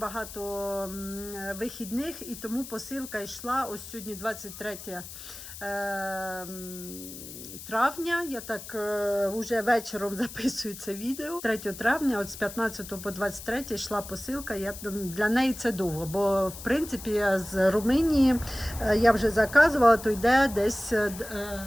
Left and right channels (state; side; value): noise; left; hiss, 12 dB below the sound